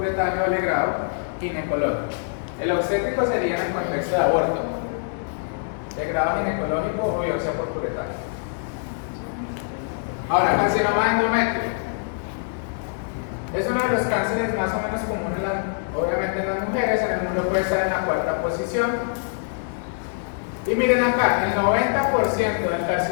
o legrado ginecológico. El obstétrico sería en el contexto de aborto, legrado ginecológico o biopsia por curetaje. Ahora, carcinoma de endometrio. Es uno de los cánceres más o menos comunes, obviamente en las mujeres. En el mundo puede estar en la cuarta posición. Y miren acá, el 90% del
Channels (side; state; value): right; silent; digital silence